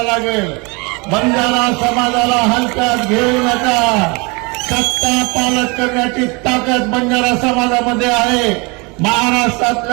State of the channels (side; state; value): left; quieter; 28.6 dB